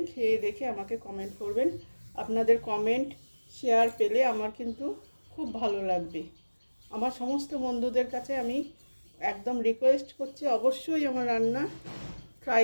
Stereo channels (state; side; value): inverted; both; correlation -1.00